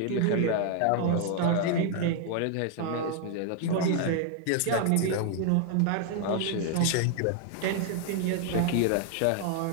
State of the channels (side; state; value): both; different; correlation 0.00